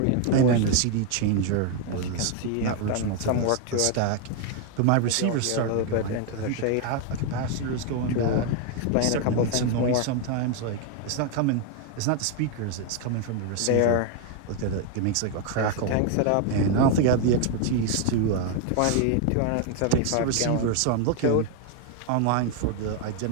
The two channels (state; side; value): different; both; correlation 0.01